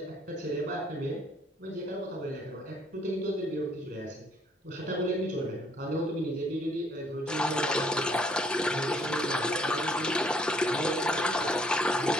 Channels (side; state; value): both; normal; correlation 0.63